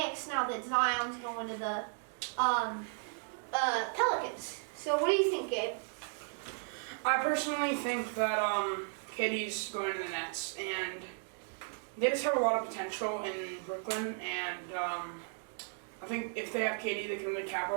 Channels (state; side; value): silent; left; 54 dB below the other